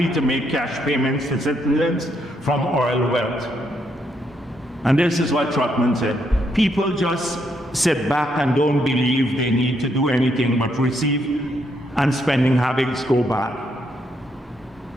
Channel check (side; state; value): both; normal; correlation 0.76